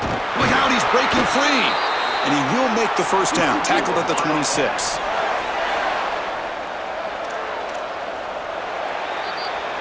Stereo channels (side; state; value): both; identical; correlation 1.00